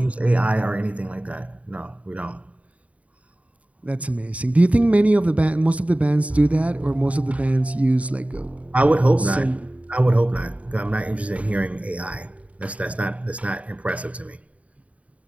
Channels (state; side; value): late; left; 0.067 ms